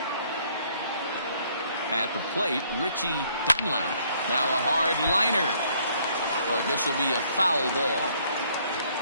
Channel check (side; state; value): both; inverted; correlation -0.64